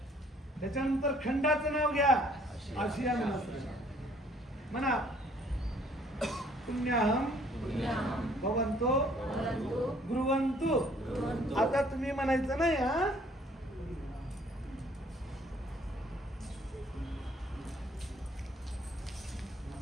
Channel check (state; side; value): normal; both; correlation 0.60